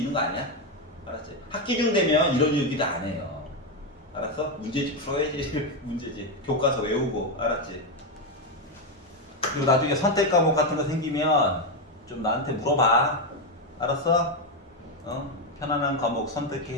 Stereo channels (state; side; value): normal; both; correlation 0.07